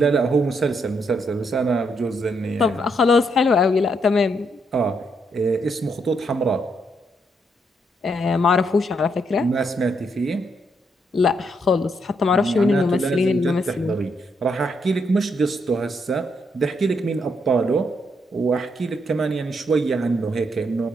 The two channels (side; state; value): both; normal; correlation 0.76